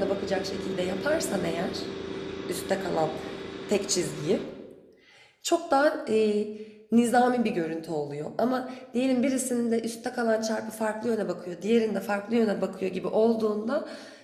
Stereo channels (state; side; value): identical; both; correlation 1.00